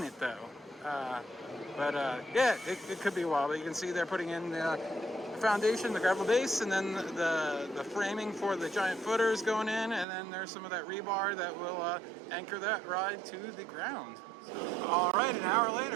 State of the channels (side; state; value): left; drops out; at 10.1 s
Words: it though. Yeah, it could be a while. But you can see they're putting in the foundation, the gravel base, and then the framing for the giant footers going in, and then there's some of that rebar that will anchor that ride to the ground. All right, an hour